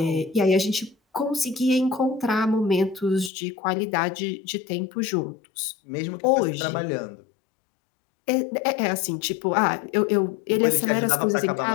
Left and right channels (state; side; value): drops out; right; at 3.3 s